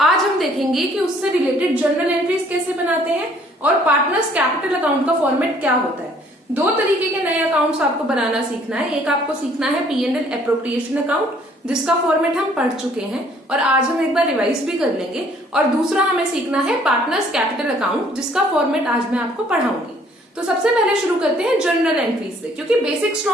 हम देखेंगे कि उससे रिलेटेड जर्नल एंट्रीज कैसे बनाते हैं और पार्टनर्स कैपिटल अकाउंट का फॉर्मेट क्या होता है। दो तरीके के नए अकाउंट्स आपको बनाना सीखना है। एक आपको सीखना है P&L एप्रोप्रिएशन अकाउंट जिसका फॉर्मेट हम पढ़ चुके हैं और आज हम एक बार रिवाइज भी कर लेंगे, और दूसरा हमें सीखना है पार्टनर्स कैपिटल अकाउंट जिसका फॉर्मेट आज मैं आपको पढ़ाऊंगी। तो सबसे पहले शुरू करते हैं जर्नल एंट्रीज से, क्योंकि बेसिक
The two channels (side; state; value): both; normal; correlation 0.60